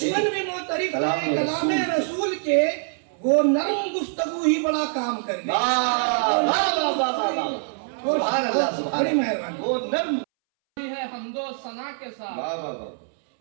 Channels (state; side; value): silent; left; 62 dB below the other